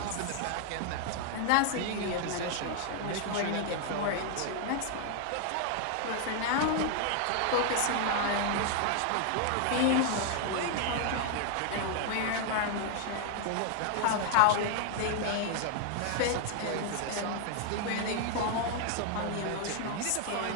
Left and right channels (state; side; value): different; both; correlation 0.00